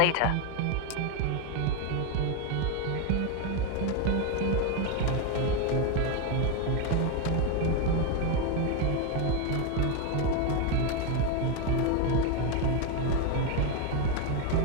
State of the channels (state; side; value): different; both; correlation 0.02